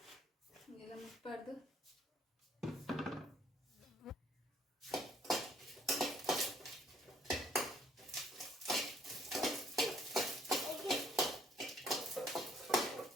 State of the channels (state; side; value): normal; both; correlation 0.63